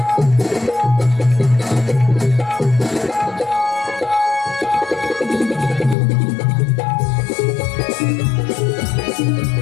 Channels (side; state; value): right; drops out; at 6.0 s